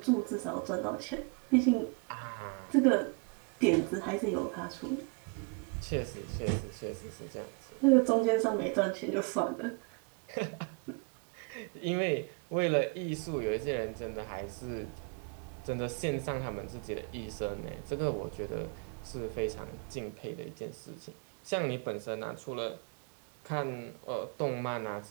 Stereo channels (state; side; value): quieter; left; 33.7 dB